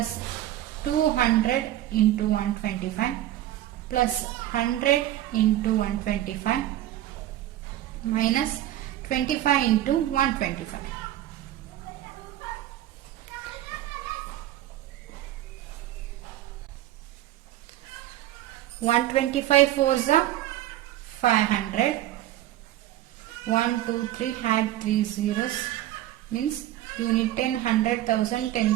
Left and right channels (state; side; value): quieter; left; 13.7 dB